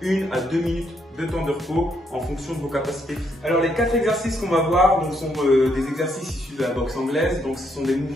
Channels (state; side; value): normal; both; correlation 0.75